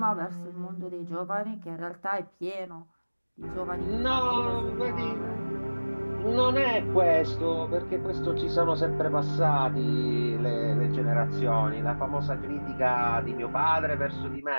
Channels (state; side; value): inverted; both; correlation -1.00